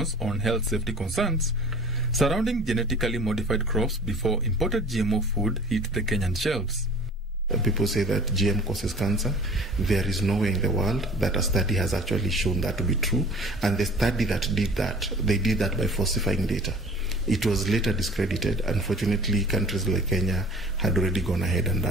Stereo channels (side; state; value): both; normal; correlation 0.47